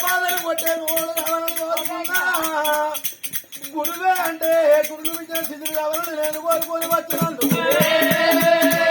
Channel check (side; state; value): both; identical; correlation 1.00